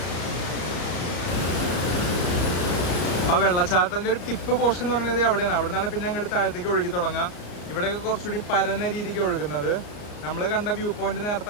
ആ വെള്ളച്ചാട്ടത്തിൻ്റെ ഒരു ടിപ്പ് പോർഷൻ എന്ന് പറയുന്നത് അവിടെയാണ്. അവിടെ നിന്നാണ് പിന്നെ അങ്ങോട്ട് താഴത്തേക്ക് ഒഴുകി തുടങ്ങുക. ഇവിടെയൊക്കെ കുറച്ചുകൂടി പരന്ന രീതിക്ക് ഒഴുകുന്നത്. നമ്മൾ കണ്ട വ്യൂ പോയിന്റ് നേരത്തെ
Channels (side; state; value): right; late; 34 ms